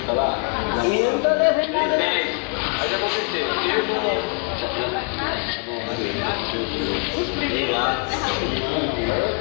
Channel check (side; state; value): right; quieter; 33.7 dB